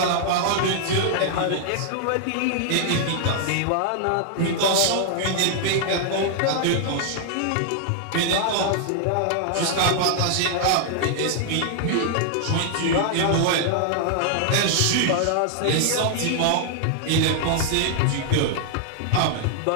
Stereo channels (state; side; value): different; both; correlation -0.01